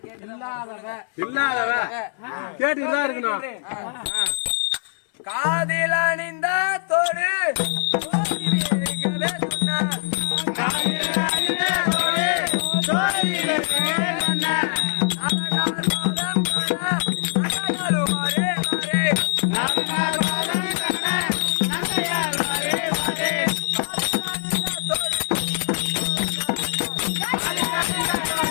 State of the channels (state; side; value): silent; right; 59 dB below the other